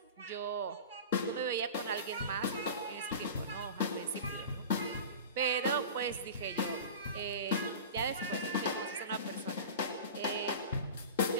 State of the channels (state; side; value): inverted; both; correlation -0.33